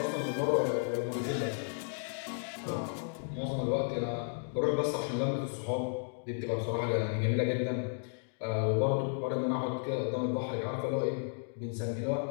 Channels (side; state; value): right; silent; digital silence